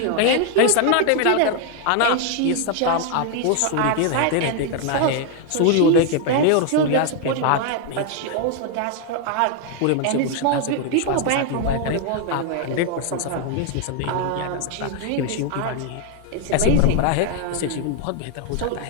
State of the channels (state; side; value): different; both; correlation 0.00